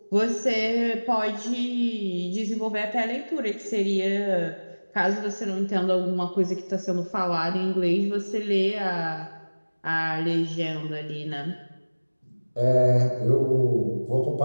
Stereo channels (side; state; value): both; inverted; correlation -1.00